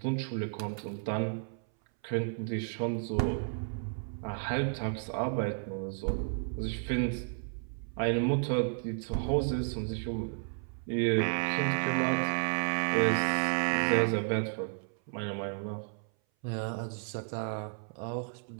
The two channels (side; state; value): left; silent; 56 dB below the other